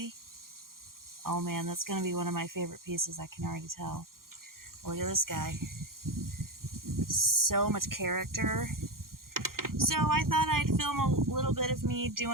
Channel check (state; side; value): late; left; 0.92 ms